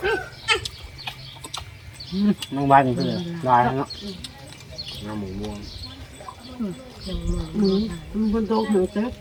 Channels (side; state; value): both; identical; correlation 1.00